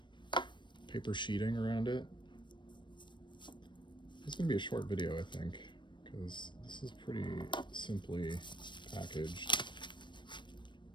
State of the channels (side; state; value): right; late; 0.22 ms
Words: paper sheeting around it. It's gonna be a short video, I think, because this is pretty simply packaged.